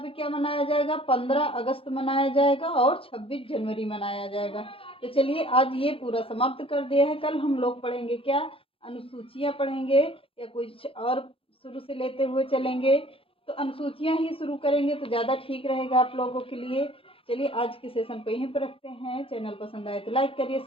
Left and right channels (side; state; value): right; late; 0.27 ms